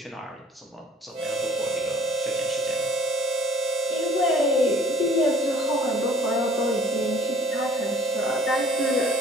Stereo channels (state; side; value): normal; both; correlation 0.53